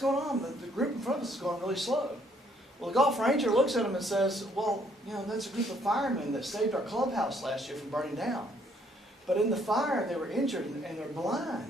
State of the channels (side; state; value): both; normal; correlation 0.67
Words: going on? The group in front of us is going really slow." Well, the golf ranger looks at him and says, "Well, you know, that's a group of firemen that saved our clubhouse last year from burning down. But in the fire, they were injured and they're